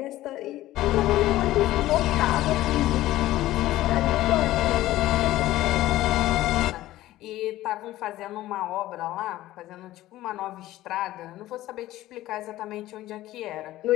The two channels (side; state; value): right; quieter; 15.5 dB